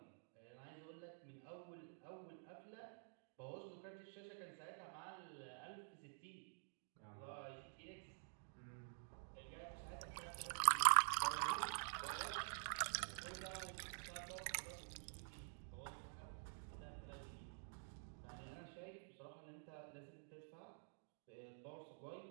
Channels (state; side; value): silent; left; digital silence